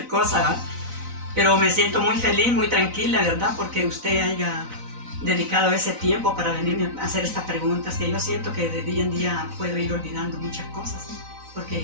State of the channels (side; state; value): left; late; 4.0 ms